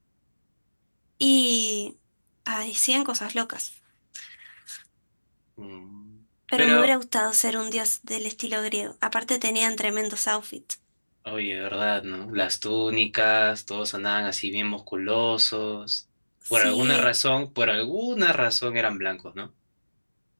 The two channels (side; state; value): both; inverted; correlation -1.00